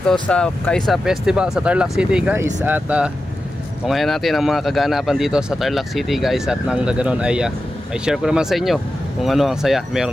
sa Kaisa Festival sa Tarlac City, guys. At tungayan natin ang mga kaganapan dito sa Tarlac City, guys. At nang ganoon ay may share ko naman sa inyo kung ano ang saya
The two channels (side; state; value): both; normal; correlation 0.92